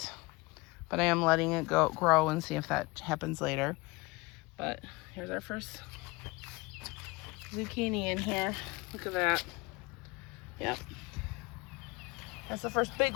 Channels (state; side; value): quieter; right; 23.6 dB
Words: but I am letting it grow and see if that happens later. But here's our first zucchini in here. Look at that. Yep. That's the first